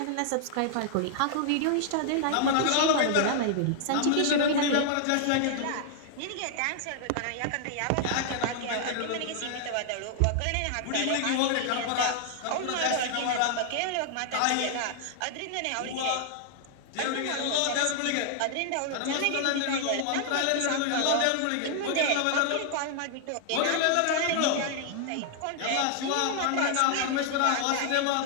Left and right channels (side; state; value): both; different; correlation 0.00